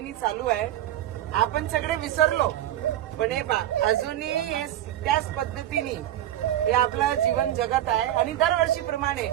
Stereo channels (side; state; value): left; quieter; 12.7 dB